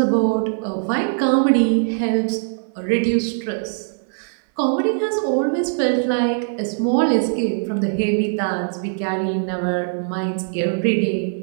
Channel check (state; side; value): silent; left; digital silence